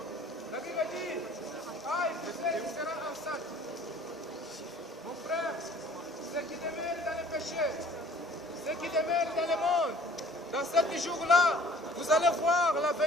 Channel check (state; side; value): normal; both; correlation 0.53